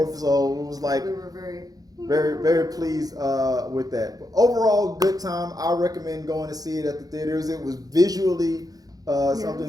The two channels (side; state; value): left; late; 0.18 ms